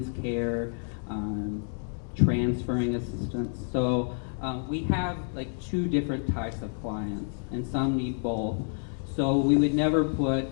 care, transferring assistance. So we have like two different types of clients, and some need both. So we would never put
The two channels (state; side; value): silent; right; 56 dB below the other